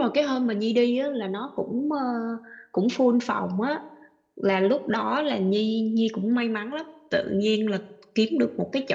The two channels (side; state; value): both; identical; correlation 1.00